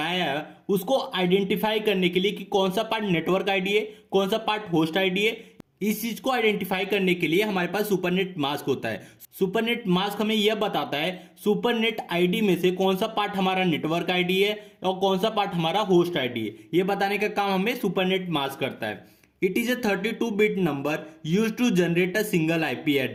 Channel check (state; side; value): identical; both; correlation 1.00